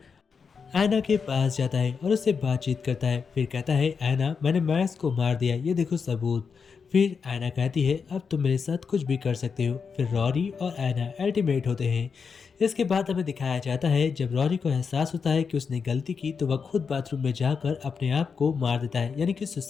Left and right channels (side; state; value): right; quieter; 5.7 dB